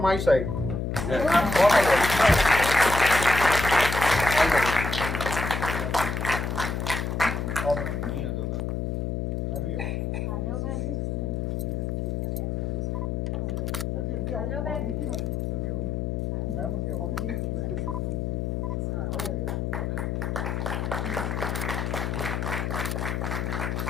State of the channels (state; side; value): noise; left; hum, 1 dB below the sound